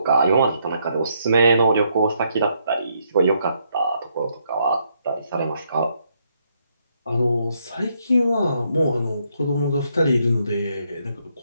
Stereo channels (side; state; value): both; inverted; correlation -0.74